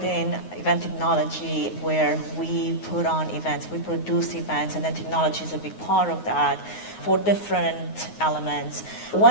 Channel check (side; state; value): right; late; 9.5 ms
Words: in, event technology, where we put on events, we produce events, and then technology is a big part of that for different elements.